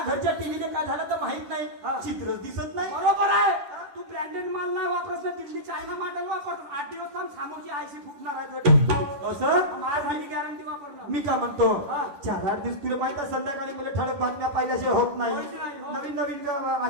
घरच्या टीव्हीने काय झालं तर माहित नाही चित्रच दिसत नाही बरोबर आहे तू ब्रँडेड माल नाही वापरत ना, दिल्ली चायना मॉडेल वापरतो 8 दिवस थांब सामोरची आयसी फुटणार आहे तुझी. असं माझ्यासाठी गॅरंटी वापरणं मी काय म्हणतो हा. 4-8 दिवस तुला माहित आहे संध्याकाळी मला ठळक बातम्या पाहिल्याशिवाय होत नाही होत नाही, हो. नवीन नवीन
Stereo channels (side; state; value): left; late; 11 ms